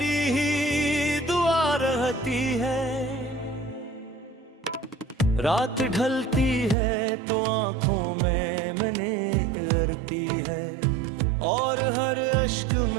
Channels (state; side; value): drops out; left; at 6.8 s